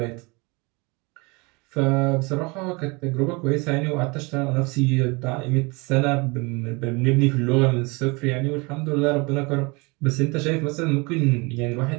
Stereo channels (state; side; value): quieter; left; 27.4 dB